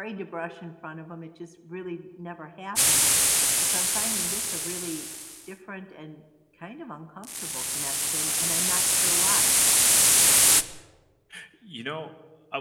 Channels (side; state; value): both; identical; correlation 1.00